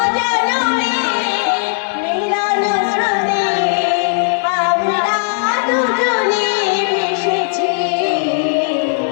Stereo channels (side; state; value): right; silent; 68 dB below the other